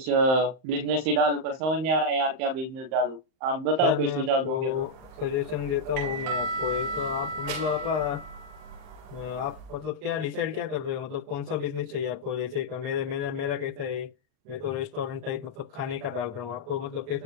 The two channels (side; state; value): left; late; 38 ms